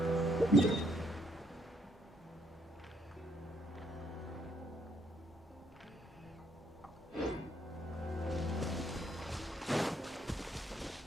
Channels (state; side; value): normal; both; correlation 0.69